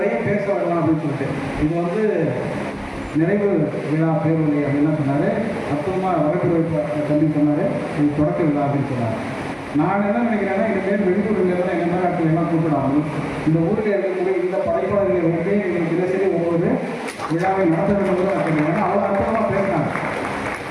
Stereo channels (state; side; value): identical; both; correlation 1.00